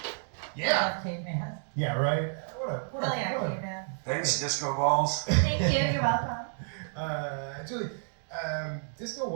Yeah. Caveman. Yeah, right. Hell yeah, caveman. Thanks, Disco Balls. Thank you. You're welcome. Julie, Disco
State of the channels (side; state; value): left; silent; digital silence